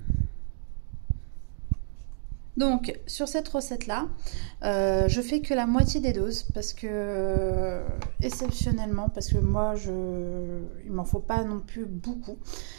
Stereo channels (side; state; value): left; silent; digital silence